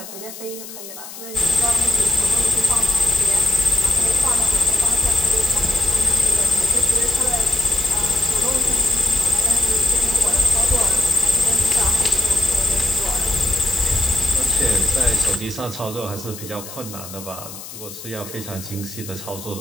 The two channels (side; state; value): left; noise; hiss, 13 dB below the sound